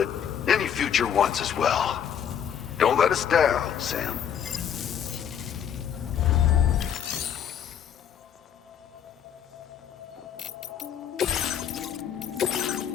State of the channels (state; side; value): quieter; right; 8.7 dB